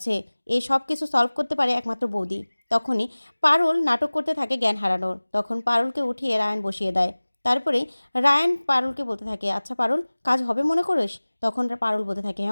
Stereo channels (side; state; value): both; inverted; correlation -1.00